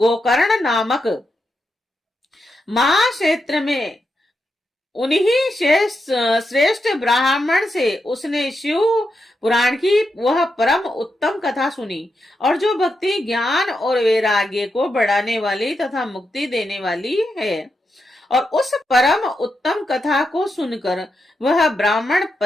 नामक महाक्षेत्र में उन्हीं श्रेष्ठ ब्राह्मण से उसने शिव पुराण की वह परम उत्तम कथा सुनी और जो भक्ति, ज्ञान और वैराग्य को बढ़ाने वाली तथा मुक्ति देने वाली है। और उस परम उत्तम कथा को सुनकर वह ब्राह्मण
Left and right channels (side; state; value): both; normal; correlation 0.85